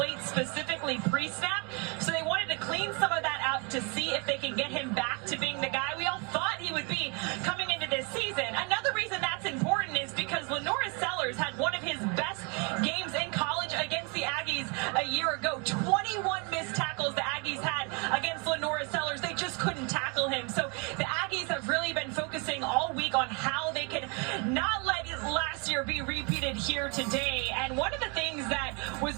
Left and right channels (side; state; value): left; quieter; 32.5 dB